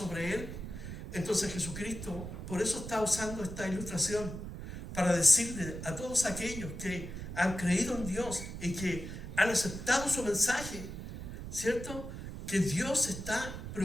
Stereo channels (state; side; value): noise; right; rumble, 8 dB below the sound